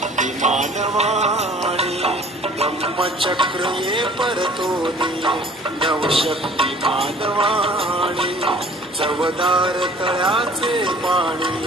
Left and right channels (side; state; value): both; normal; correlation 0.51